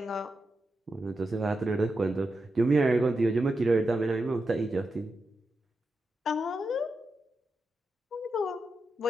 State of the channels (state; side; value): normal; both; correlation 0.88